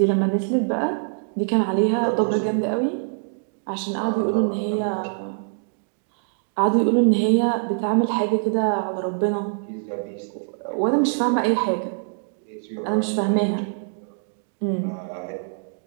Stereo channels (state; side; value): silent; left; digital silence